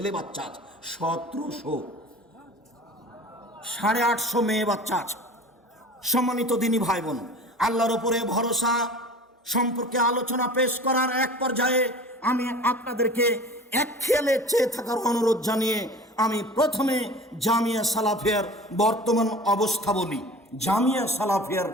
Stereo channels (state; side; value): normal; both; correlation 0.40